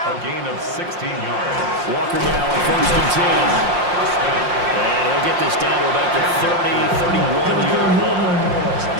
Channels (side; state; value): left; late; 5.6 ms